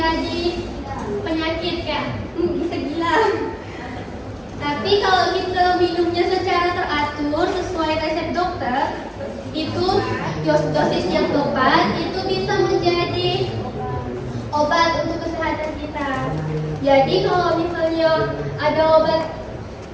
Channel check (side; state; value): both; identical; correlation 1.00